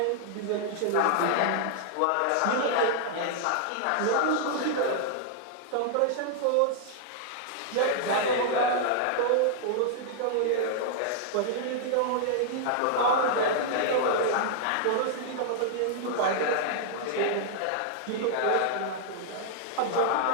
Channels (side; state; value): both; different; correlation -0.01